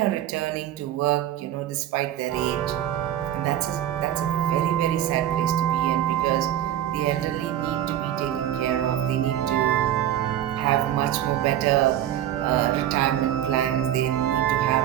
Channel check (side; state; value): left; quieter; 11.7 dB